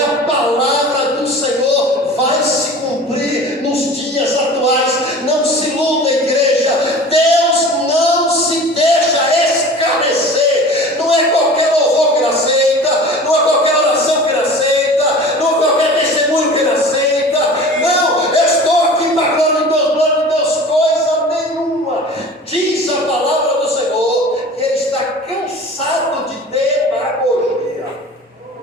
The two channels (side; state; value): both; normal; correlation 0.39